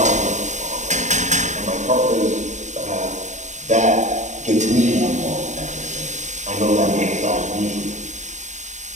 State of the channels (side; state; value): left; late; 0.34 ms